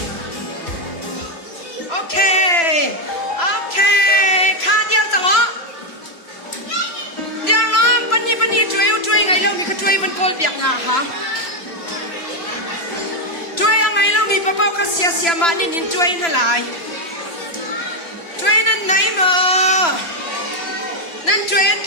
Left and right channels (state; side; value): late; right; 3.0 ms